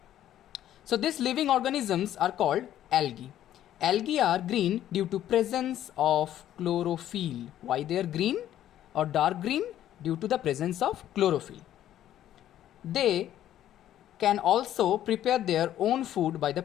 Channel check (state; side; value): quieter; right; 12.0 dB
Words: So these living organisms are called algae. Algae are green due to presence of chlorophyll. Why they are green or dark green? Due to the presence of chlorophyll. They can also prepare their own food by the